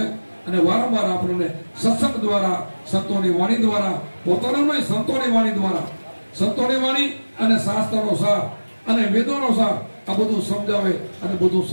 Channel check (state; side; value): inverted; both; correlation -1.00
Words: અને વારંવાર આપણને સત્સંગ દ્વારા, સંતોની વાણી દ્વારા, પોતાનું નહીં સંતોની વાણી દ્વારા, સંતોની વાણી અને શાસ્ત્રનો સાર અને વેદોનો સાર, આ બધું સમજાવે અને બધું